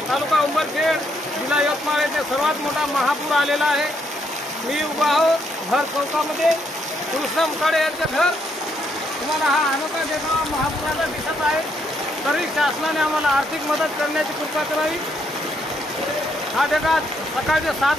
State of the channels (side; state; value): both; normal; correlation 0.74